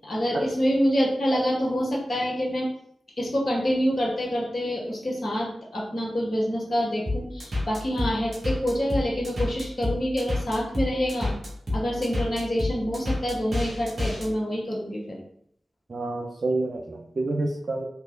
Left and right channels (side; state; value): both; normal; correlation 0.94